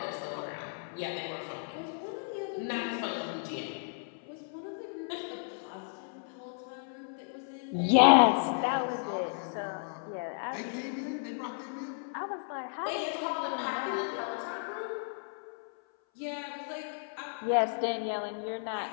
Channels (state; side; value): silent; right; 56 dB below the other